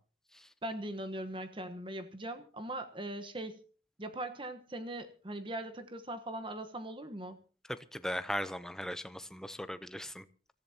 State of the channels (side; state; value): both; normal; correlation 0.60